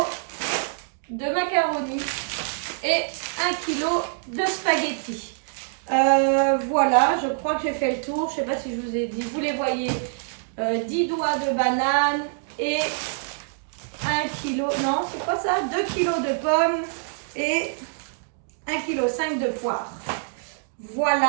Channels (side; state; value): left; silent; digital silence